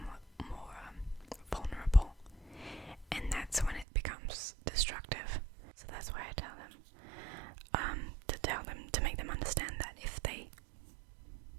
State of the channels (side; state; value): left; drops out; at 3.9 s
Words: more vulnerable, and that's when it becomes destructive. So that's why I tell them to make them understand that if they